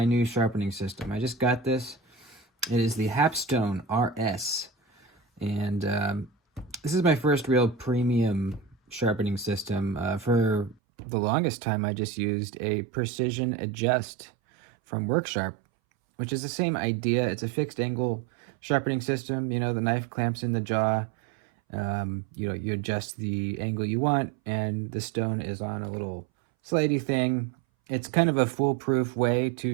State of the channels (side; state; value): left; drops out; at 10.8 s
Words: new sharpening system. I just got this. It is the Hapstone RS, and this is my first real premium sharpening system. For the longest time, I just used a precision adjust from Worksharp, which is the same idea. It's a fixed angle sharpening system. You know, the knife clamps in the jaw. You adjust the angle you want, and the stone is on a little slidey thing. It's kind of a foolproof way